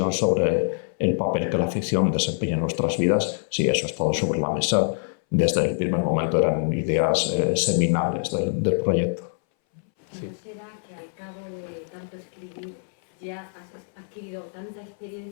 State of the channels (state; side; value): silent; right; 61 dB below the other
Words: sobre el papel que la ficción desempeña en nuestras vidas, sí, eso ha estado sobre la mesa desde el primer momento, eran ideas seminales del proyecto. Sí. ¿Será que al cabo de tanto escribir ya has adquirido tanta